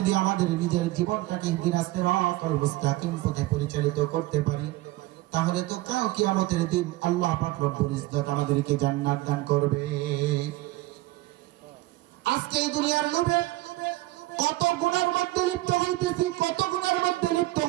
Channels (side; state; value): left; quieter; 18.2 dB